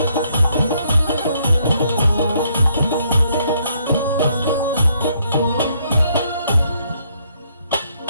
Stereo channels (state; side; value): inverted; both; correlation -0.70